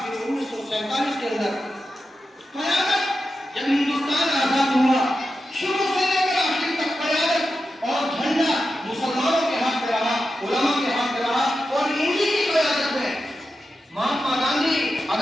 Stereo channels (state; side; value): normal; both; correlation 0.90